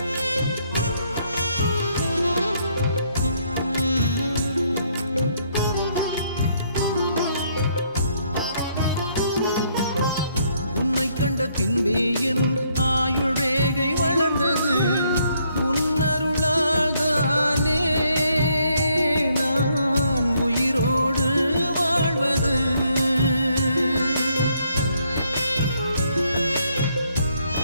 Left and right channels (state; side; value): inverted; both; correlation -0.71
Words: கண்ட பின்பே என் ஆயுள் ரேகை வளர்ந்தது, உன்னருளால் தானே நான் உயிரோடு வாழ்வது.